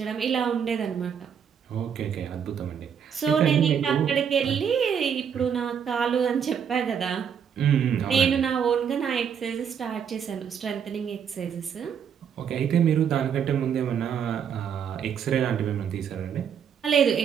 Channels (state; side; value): quieter; left; 7.7 dB